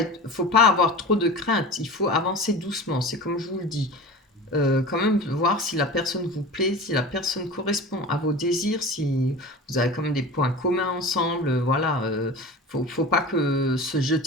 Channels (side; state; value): both; normal; correlation 0.34